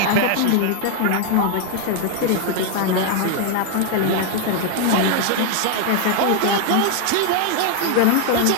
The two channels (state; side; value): different; both; correlation 0.00